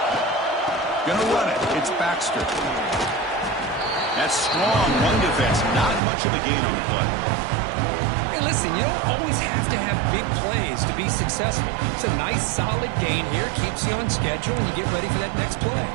Gonna run it. It's Baxter. That's strong run defense. Not much of a gain on the play. Hey, listen, you don't always have to have big plays to be successful. It's a nice, solid gain here. Keeps you on schedule, and you get ready for that next play.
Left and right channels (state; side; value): drops out; left; at 6.0 s